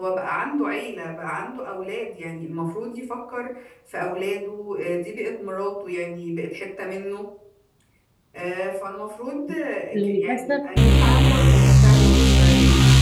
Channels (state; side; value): identical; both; correlation 1.00